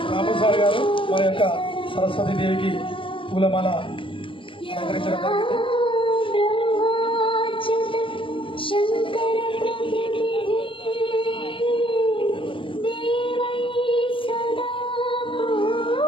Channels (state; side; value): late; right; 0.25 ms